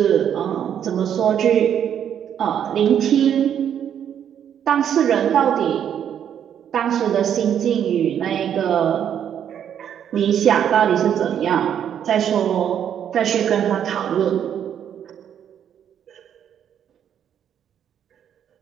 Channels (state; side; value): quieter; left; 9.2 dB